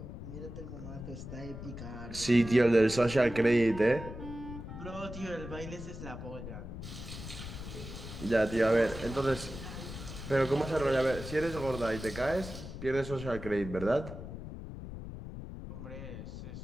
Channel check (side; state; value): left; noise; rumble, 10 dB below the sound